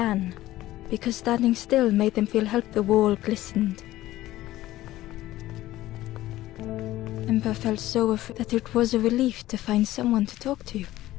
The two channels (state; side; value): quieter; right; 15.6 dB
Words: because standing still made them feel help. The wall glistened. Ember felt so afraid that it was a relief to find someone to talk to.